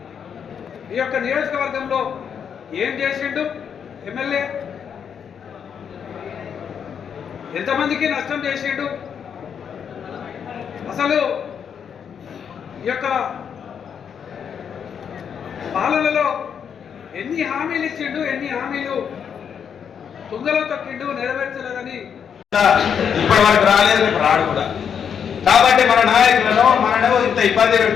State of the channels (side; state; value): right; quieter; 7.5 dB